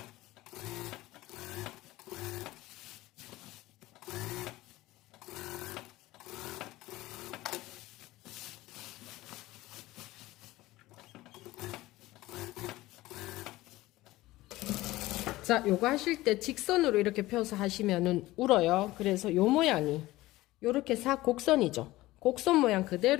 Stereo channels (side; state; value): right; quieter; 17.9 dB